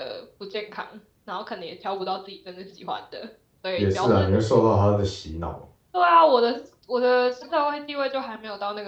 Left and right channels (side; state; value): both; identical; correlation 1.00